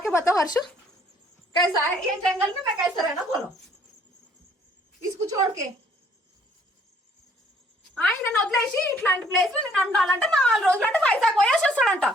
बताओ हर्ष कैसा है ये जंगल में मैं कैसा रहना बोलो इसको छोड़ के ఆయన వదిలేసి ఇట్లాంటి ప్లేస్ లో నేను ఉండాలంటే 4 రోజులు అంటే వైజాగ్ పోయేసి వస్తాడంట.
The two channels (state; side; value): normal; both; correlation 0.62